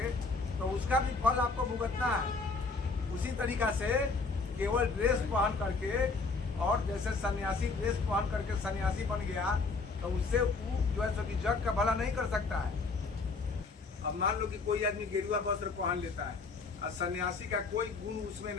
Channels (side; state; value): right; quieter; 4.1 dB